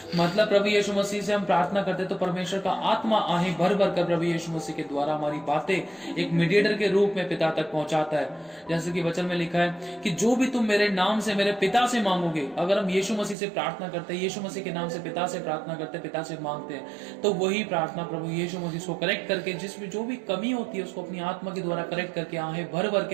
मतलब प्रभु यीशु मसीह से हम प्रार्थना करते तो परमेश्वर का आत्मा आहें भर भर कर प्रभु यीशु मसीह के द्वारा हमारी बातें एक मीडिएटर के रूप में पिता तक पहुंचाता है। जैसे कि वचन में लिखा है कि जो भी तुम मेरे नाम से मेरे पिता से मांगोगे, अगर हम यीशु मसीह से प्रार्थना करते हैं, यीशु मसीह के नाम से पिता से प्रार्थना करते हैं, पिता से मांगते हैं, तो वही प्रार्थना प्रभु यीशु मसीह को करेक्ट करके जिसमें जो भी कमी होती है उसको अपनी आत्मा के द्वारा करेक्ट करके आहें भर भर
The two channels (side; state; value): left; drops out; at 13.4 s